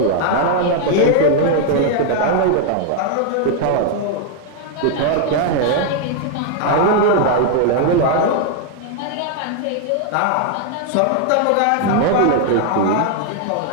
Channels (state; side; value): different; both; correlation 0.00